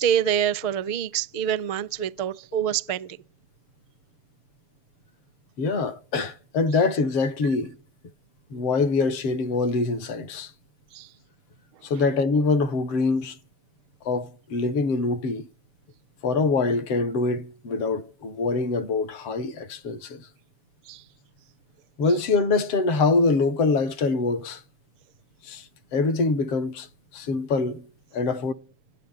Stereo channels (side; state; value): right; late; 7.0 ms